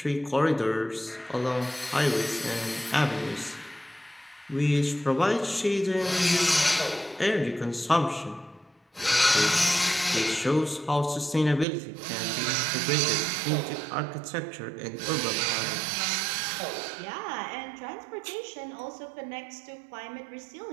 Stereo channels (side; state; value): left; drops out; at 11.7 s